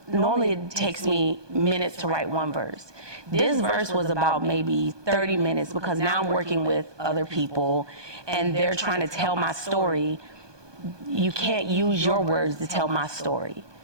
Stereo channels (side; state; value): left; late; 1.2 ms